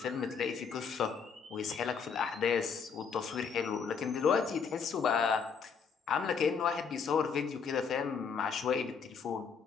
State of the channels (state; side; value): quieter; right; 6.0 dB